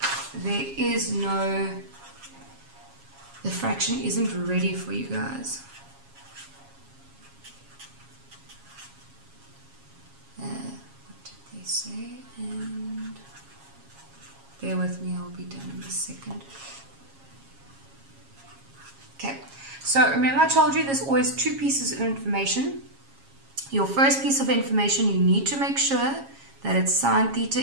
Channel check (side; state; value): left; late; 7.3 ms